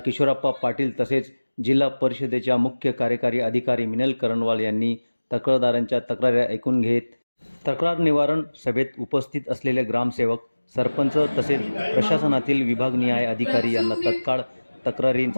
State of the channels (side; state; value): both; inverted; correlation -1.00